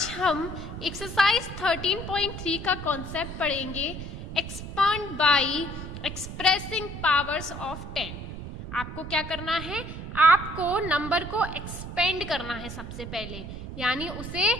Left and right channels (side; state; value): right; noise; rumble, 9 dB below the sound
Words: हम exercise 13.3 का कॉन्सेप्ट पढ़ेंगे expand bye expressing powers of 10। आपको क्या करना है, आपको नंबर को एक्सपेंड करना है सबसे पहले, यानी उसे